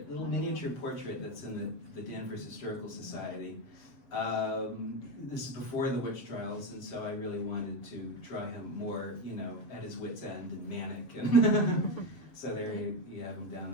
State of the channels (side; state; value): right; late; 7.4 ms